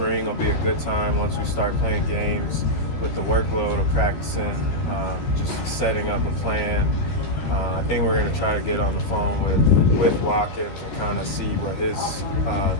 will be a good time once we start playing games with the workload of practicing, just setting up a plan. I think we're going to try to get on the phone with Watkins and kind of see what his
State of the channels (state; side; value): late; right; 13 ms